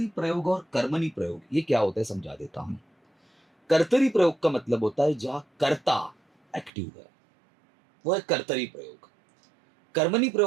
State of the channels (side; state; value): left; drops out; at 6.7 s